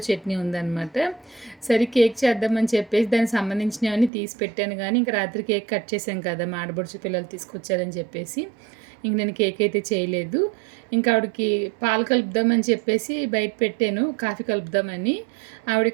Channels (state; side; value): drops out; left; at 4.1 s